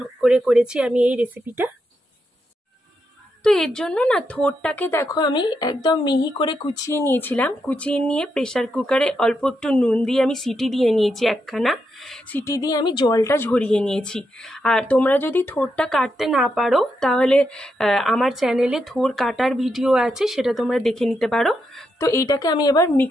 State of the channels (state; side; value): normal; both; correlation 0.83